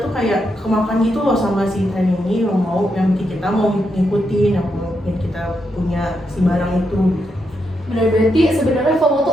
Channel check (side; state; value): both; normal; correlation 0.82